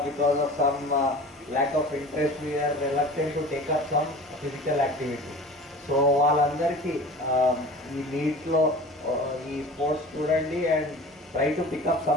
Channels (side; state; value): both; normal; correlation 0.39